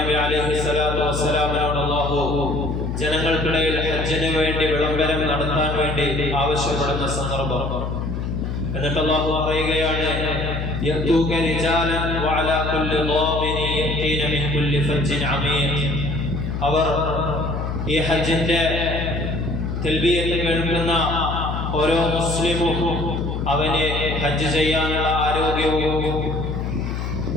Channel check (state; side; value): noise; left; hum, 3 dB below the sound